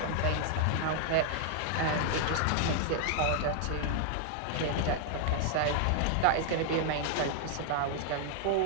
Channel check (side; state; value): both; different; correlation 0.00